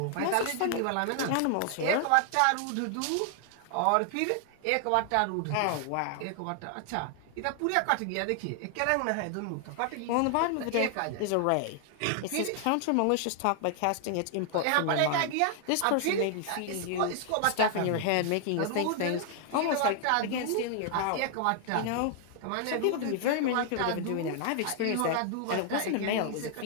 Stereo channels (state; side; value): different; both; correlation 0.00